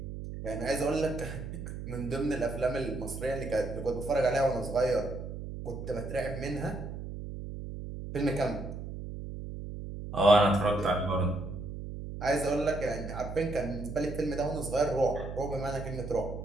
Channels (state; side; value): noise; right; hum, 8 dB below the sound